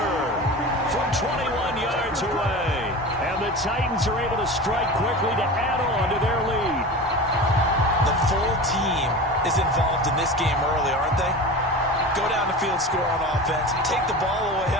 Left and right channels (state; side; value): normal; both; correlation 0.31